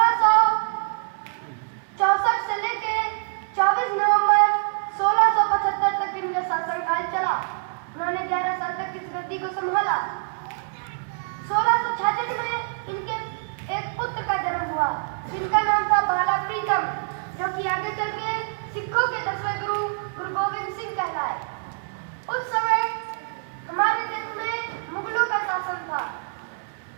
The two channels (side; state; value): left; silent; digital silence